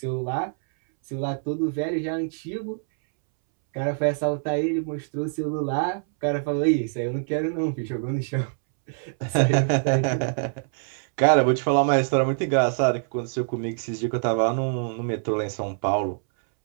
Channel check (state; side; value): silent; left; 62 dB below the other